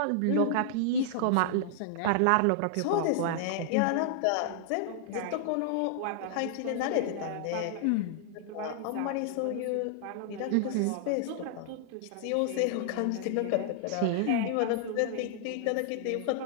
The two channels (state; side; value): different; both; correlation -0.01